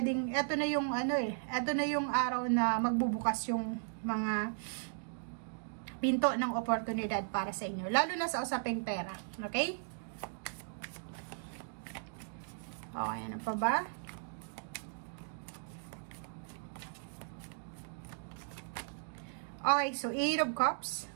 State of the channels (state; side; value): silent; left; digital silence